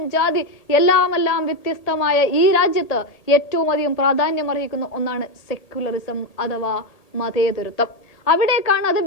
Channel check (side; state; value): right; late; 1.8 ms